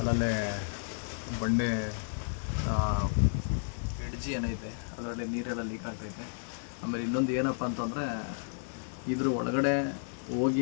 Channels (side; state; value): right; silent; 56 dB below the other